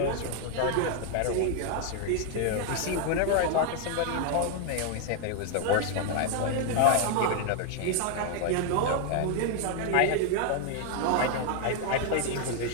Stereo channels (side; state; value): both; different; correlation 0.00